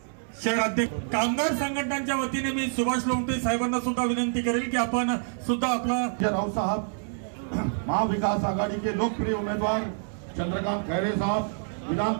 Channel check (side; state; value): left; silent; digital silence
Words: शहर अध्यक्ष कामगार संघटनांच्या वतीने मी सुभाष लोमटे साहेबांना सुद्धा विनंती करेल की आपण सुद्धा आपला राव साहब, महाविकास आघाड़ी के लोकप्रिय उम्मीदवार चंद्रकांत खैरे साहब, विधान